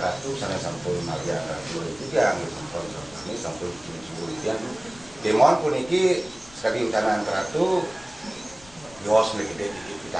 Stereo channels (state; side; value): noise; left; rumble, 23 dB below the sound